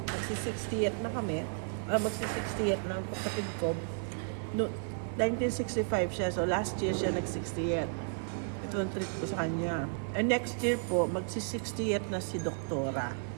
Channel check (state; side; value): silent; left; digital silence